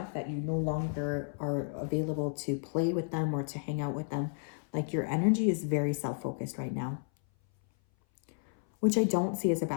that you no longer are available to play with them or to hang out with them. Like your energy is very self-focused right now, which I don't see as a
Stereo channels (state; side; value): silent; right; 56 dB below the other